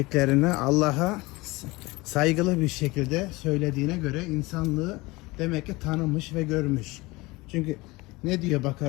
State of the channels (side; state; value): right; quieter; 22.4 dB